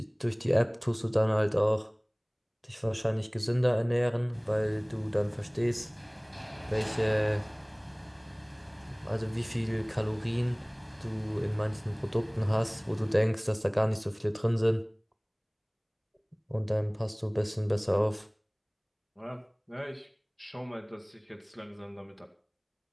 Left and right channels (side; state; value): both; identical; correlation 1.00